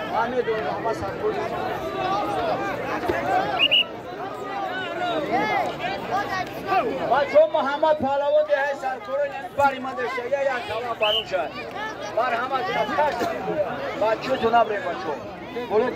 हमें दो हमारा सारकोल بچه محمد پهلوان ده سرکوره باری من داشته یا کلام بانو شد بار همه جناب کشت بچه تو نبره بچه بوله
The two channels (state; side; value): identical; both; correlation 1.00